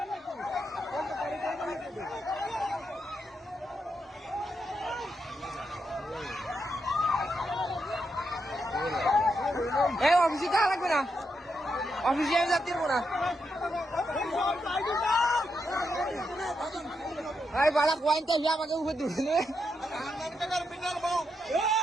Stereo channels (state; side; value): normal; both; correlation 0.83